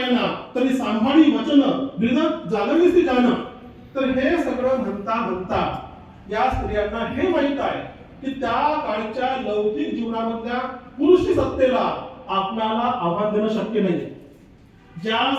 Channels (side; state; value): both; identical; correlation 1.00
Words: तरी सांभाळी वचन हृदय जागविसी जाण, तर हे सगळं म्हणता या स्त्रियांना हे माहित आहे की त्या काळच्या लौकिक जीवनामधल्या पुरुष सत्तेला आपल्याला आव्हान देणं शक्य नाही. ज्या